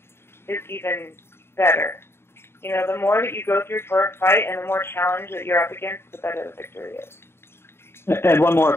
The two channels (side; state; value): right; late; 0.12 ms